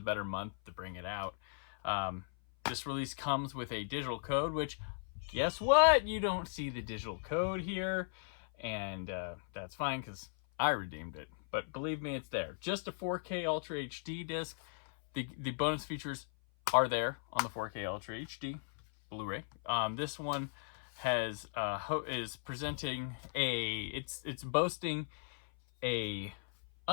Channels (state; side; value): silent; right; 53 dB below the other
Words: better month to bring it out. This release comes with a digital code, which, guess what? You don't see the digital code here. And that's fine because I redeemed it. But believe me, it's there. Just a 4K Ultra HD disc. The bonus features are there on the 4K Ultra HD Blu-ray. This one has is presenting it's boasting a